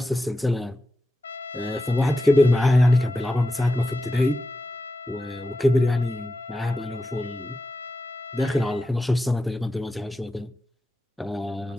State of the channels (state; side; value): normal; both; correlation 0.92